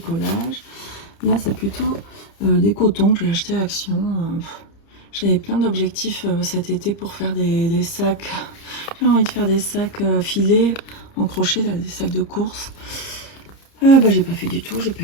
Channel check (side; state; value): right; late; 30 ms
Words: Là c'est plutôt des cotons que j'ai acheté à Action. J'avais plein d'objectifs cet été pour faire des sacs. J'ai envie de faire des sacs filés en crochet, là, des sacs de course. Bah, j'ai pas fait du tout, j'ai pas